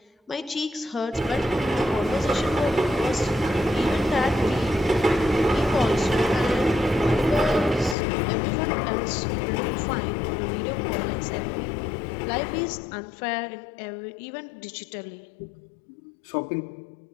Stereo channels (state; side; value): drops out; right; at 8.0 s